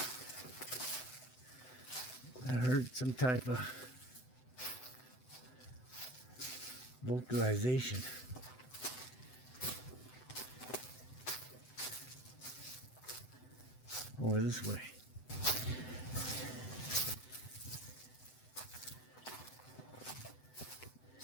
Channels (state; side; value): late; right; 7.9 ms